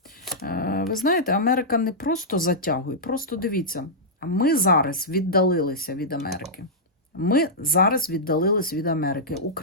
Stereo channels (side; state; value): both; normal; correlation -0.11